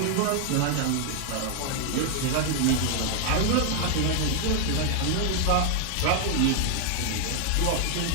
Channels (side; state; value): both; different; correlation 0.00